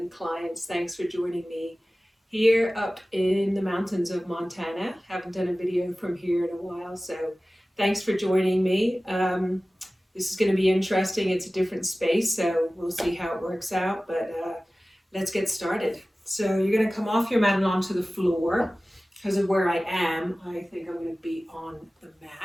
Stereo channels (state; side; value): normal; both; correlation 0.97